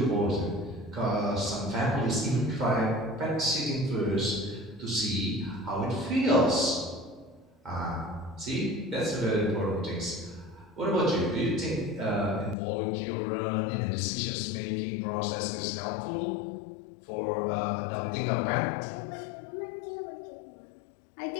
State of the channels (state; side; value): drops out; right; at 12.6 s